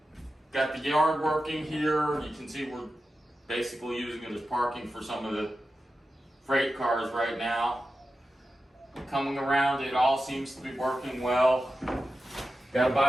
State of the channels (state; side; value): normal; both; correlation 0.92